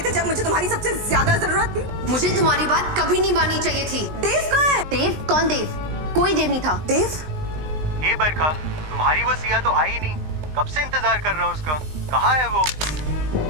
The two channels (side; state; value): left; late; 19 ms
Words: थे जब मुझे तुम्हारी सबसे ज्यादा जरूरत थी। मुझे तुम्हारी बात कभी नहीं माननी चाहिए थी। देव कहाँ है? देव? कौन देव? कोई देव नहीं था। देव? हे बरखा, तुम्हारी वो सिया तो आई नहीं। कब से इंतजार कर रहा हूँ उसका। कहाँ है वो?